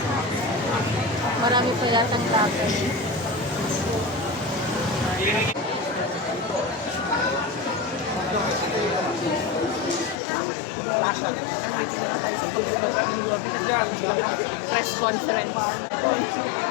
Marami pa yatang laban. Press conference.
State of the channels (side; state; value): right; drops out; at 10.2 s